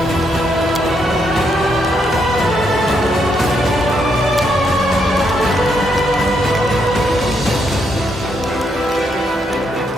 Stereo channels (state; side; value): normal; both; correlation 0.77